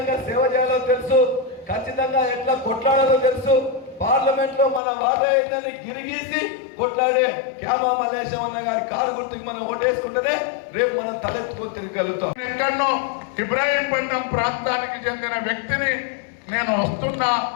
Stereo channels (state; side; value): drops out; right; at 4.8 s